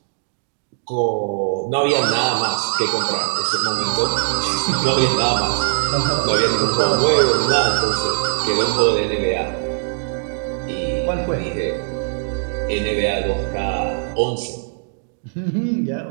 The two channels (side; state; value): left; silent; digital silence